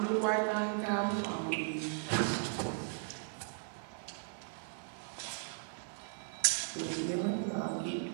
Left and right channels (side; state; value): left; silent; 53 dB below the other